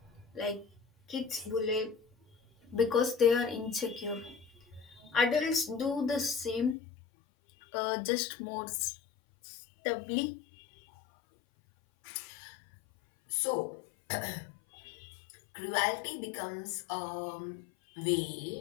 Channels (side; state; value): right; drops out; at 6.8 s